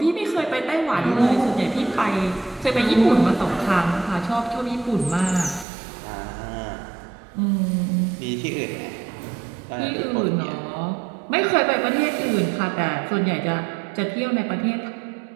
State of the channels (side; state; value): left; drops out; at 5.7 s